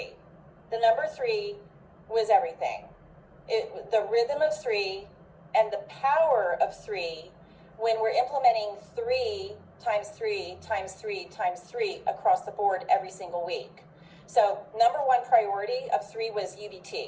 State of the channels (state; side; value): identical; both; correlation 1.00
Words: The number 3 was everything. The rhythm of 3 and the power of 3 when we're implementing 3 times 3 times 3 times 3 across the board every single week. So number 1 priority of 3 was